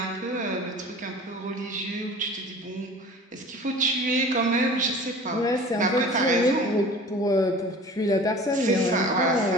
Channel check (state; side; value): normal; both; correlation 0.42